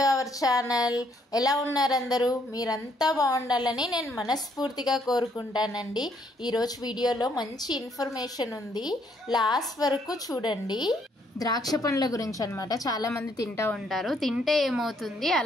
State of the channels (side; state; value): both; normal; correlation 0.69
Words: our channel. ఎలా ఉన్నారు అందరూ? మీరంతా బాగుండాలని నేను మనస్ఫూర్తిగా కోరుకుంటానండి. ఈరోజు వీడియోలో మంచి ఇన్ఫర్మేషన్ ఉంది, లాస్ట్ వరకు చూడండి. ద్రాక్ష పండ్ల గురించి అనమాట. చాలామంది తింటూ ఉంటారు. తింటే ఏమవుతుంది,